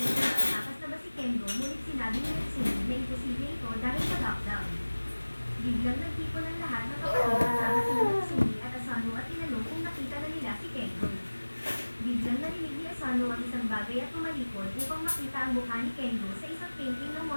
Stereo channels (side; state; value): both; inverted; correlation -1.00